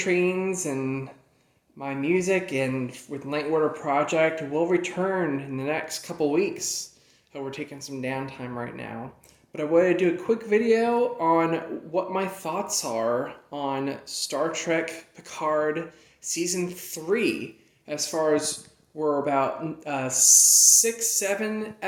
and my music and with Night Order Project will return in the next couple weeks. We're taking some downtime right now. But I wanted to do a quick video on what my thoughts are on Star Trek Picard Season 3 as far as we're about 6-7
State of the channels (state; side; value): identical; both; correlation 1.00